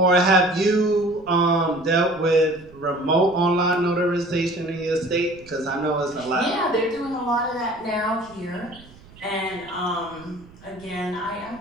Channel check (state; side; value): noise; right; rumble, 23 dB below the sound